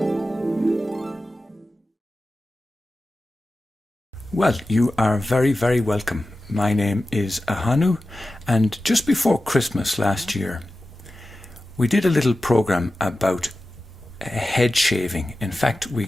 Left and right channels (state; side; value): normal; both; correlation 0.94